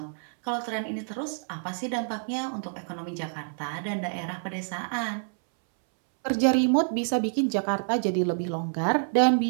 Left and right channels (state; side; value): silent; left; 60 dB below the other